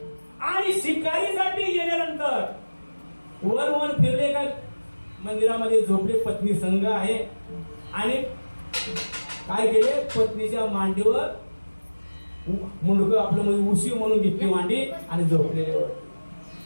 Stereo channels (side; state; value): both; inverted; correlation -1.00